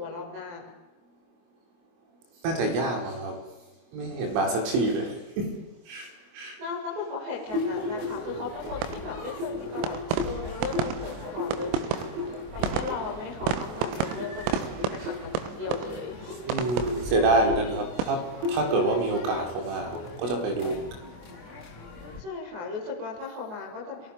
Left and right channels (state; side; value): late; left; 25 ms